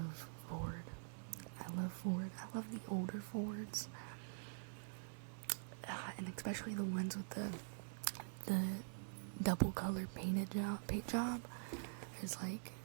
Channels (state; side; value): silent; left; digital silence